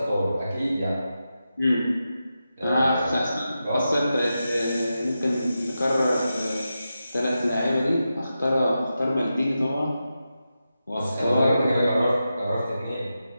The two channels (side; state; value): both; inverted; correlation -0.90